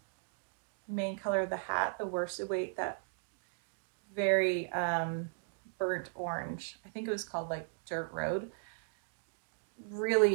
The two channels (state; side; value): silent; left; digital silence